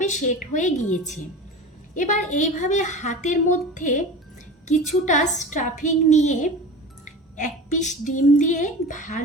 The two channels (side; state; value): both; normal; correlation 0.33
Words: সেট হয়ে গিয়েছে। এবার এইভাবে হাতের মধ্যে কিছুটা স্টাফিং নিয়ে 1 পিস ডিম দিয়ে